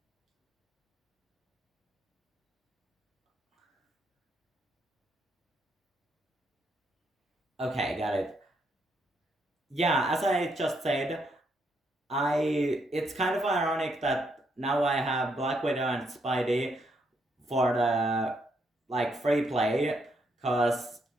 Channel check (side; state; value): both; normal; correlation 0.76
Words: Okay, got it. Yeah, as I just said, it's kind of ironic that now I have Black Widow and Spidey for the like free play, because